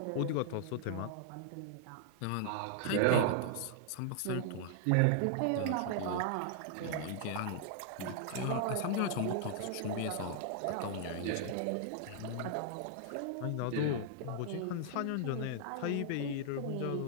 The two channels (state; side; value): different; both; correlation -0.01